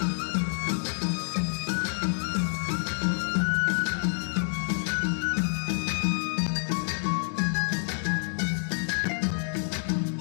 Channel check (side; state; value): right; silent; 59 dB below the other